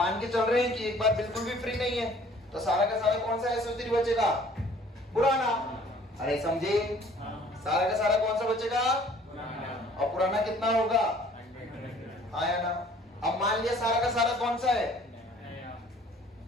के चल रहे हैं कि एक बार बिल्कुल भी फ्री नहीं है, तो सारा का सारा कौन सा SO3 बचेगा? पुराना। अरे समझे? सारा का सारा कौन सा बचेगा? और पुराना कितना होगा? हाँ या ना? अब मान लिया सारा का सारा कौन सा है?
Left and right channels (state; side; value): normal; both; correlation 0.54